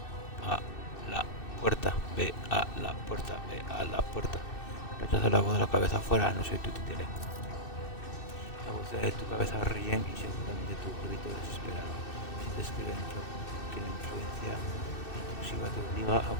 a la puerta, ve a la puerta, ve a la puerta. Rechaza la voz de la cabeza afuera, no soy tu títere. La voz de tu cabeza ríen y seguramente tu grito desesperado. Sientes que la influencia intrusiva te obliga a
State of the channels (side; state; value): right; late; 2.6 ms